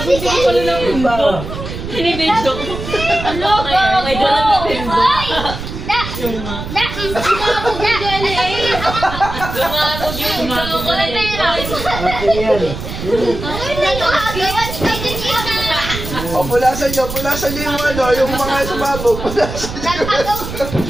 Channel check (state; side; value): noise; right; rumble, 8 dB below the sound